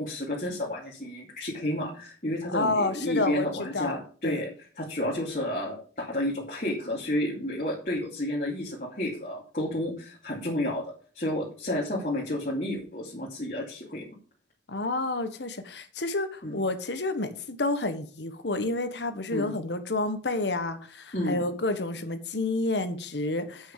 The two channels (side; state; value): both; normal; correlation 0.17